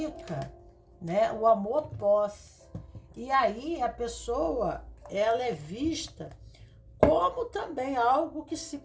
né? O amor posse. E aí a pessoa, ela é vista como também algo que se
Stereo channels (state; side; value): identical; both; correlation 1.00